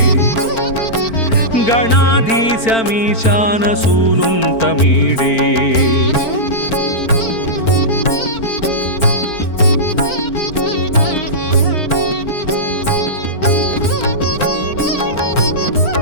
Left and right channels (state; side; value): late; right; 4.4 ms